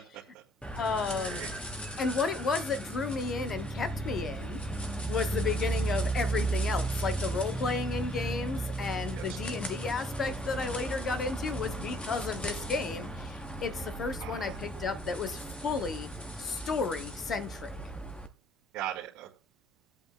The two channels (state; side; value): normal; both; correlation 0.62